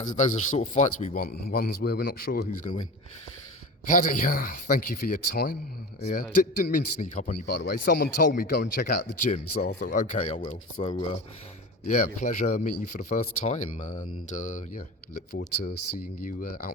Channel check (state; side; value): normal; both; correlation 0.31